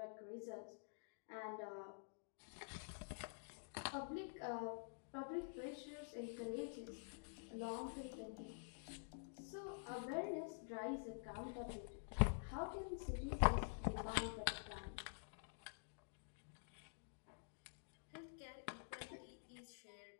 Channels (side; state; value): right; silent; digital silence